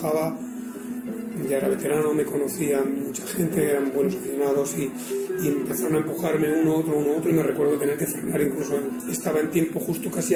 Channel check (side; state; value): both; identical; correlation 1.00